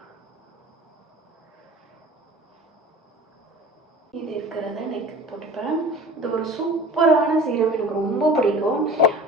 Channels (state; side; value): normal; both; correlation 0.40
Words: இது இருக்கிறத நெக் போட்டுப்பேன். இது ஒரு சூப்பரான சீரம், எனக்கு ரொம்ப பிடிக்கும்.